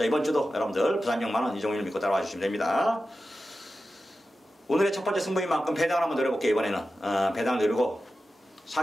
이번 주도 여러분들 부산 6만원 이종윤을 믿고 따라와 주시면 됩니다. 오늘의 첫 번째 승부인 만큼 배당을 한번 노려볼게요. 이번에는 배당을 노리고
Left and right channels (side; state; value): both; normal; correlation 0.93